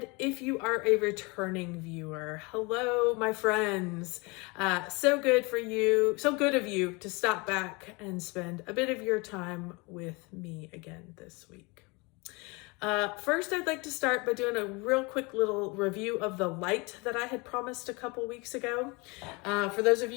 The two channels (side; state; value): right; quieter; 27.3 dB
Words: if you are a returning viewer, hello, my friends. So good of you to stop back and spend a bit of your time with me again this week. First, I'd like to start by doing a real quick little review of the light that I had promised a couple weeks ago. For those of